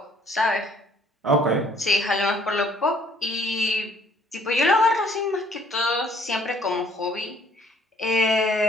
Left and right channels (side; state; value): both; normal; correlation 0.61